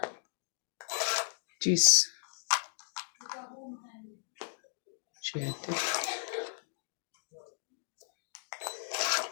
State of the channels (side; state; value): right; silent; digital silence